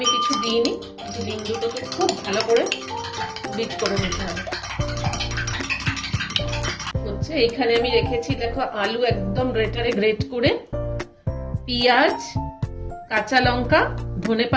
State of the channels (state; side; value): identical; both; correlation 1.00